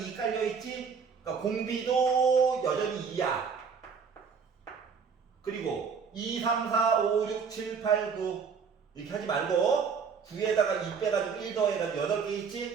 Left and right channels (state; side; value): quieter; left; 6.0 dB